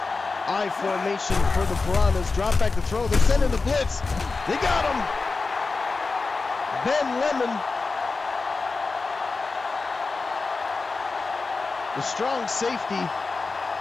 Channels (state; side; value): quieter; right; 4.0 dB